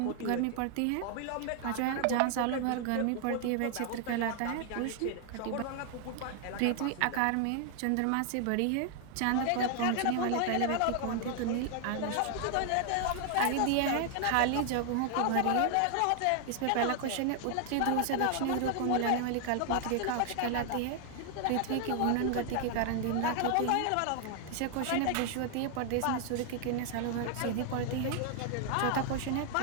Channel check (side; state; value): both; different; correlation 0.00